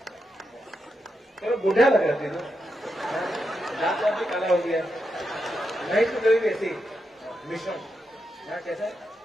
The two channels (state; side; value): normal; both; correlation 0.85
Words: थोड़ा बुढ़ा लग रहा तुझे दांत भी काला हो गया महेश तो कभी ऐसी मिश्रण हाँ कैसा है